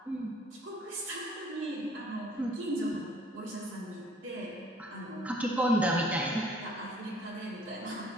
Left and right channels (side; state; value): both; normal; correlation 0.57